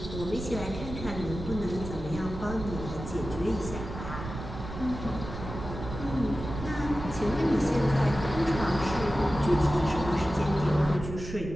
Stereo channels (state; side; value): noise; right; rumble, 9 dB below the sound